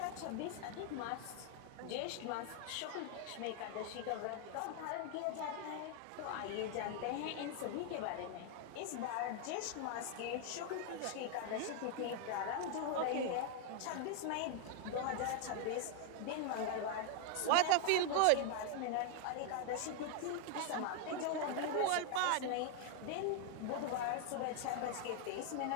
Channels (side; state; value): both; different; correlation 0.00